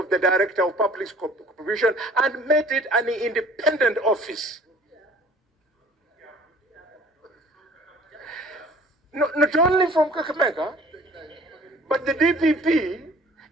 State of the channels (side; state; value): both; normal; correlation 0.51